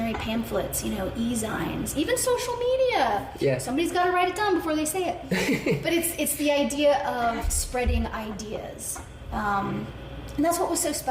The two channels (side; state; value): both; identical; correlation 1.00